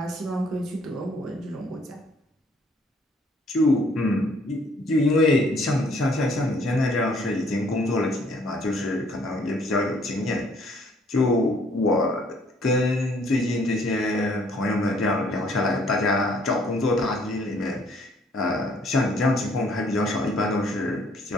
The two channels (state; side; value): normal; both; correlation 0.62